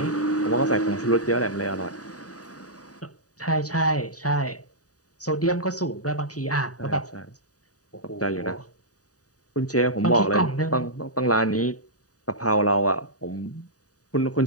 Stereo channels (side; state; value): right; late; 0.67 ms